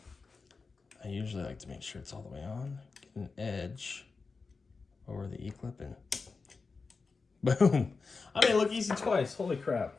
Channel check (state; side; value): quieter; right; 4.4 dB